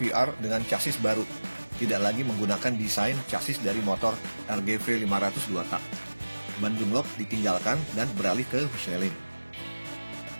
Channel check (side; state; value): both; inverted; correlation -1.00